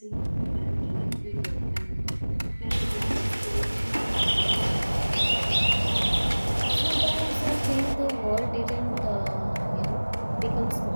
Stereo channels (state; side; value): inverted; both; correlation -1.00